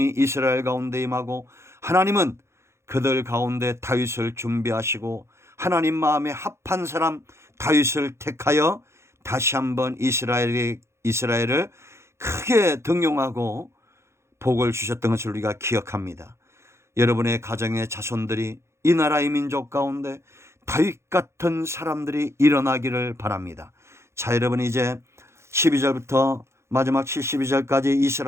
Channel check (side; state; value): left; late; 0.13 ms